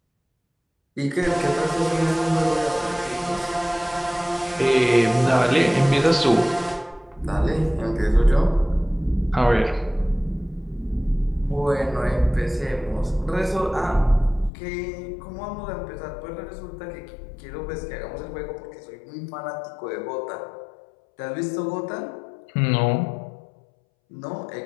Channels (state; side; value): drops out; right; at 14.5 s